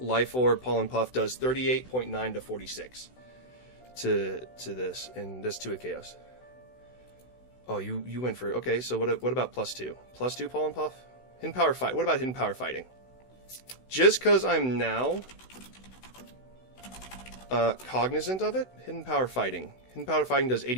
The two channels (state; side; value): late; right; 16 ms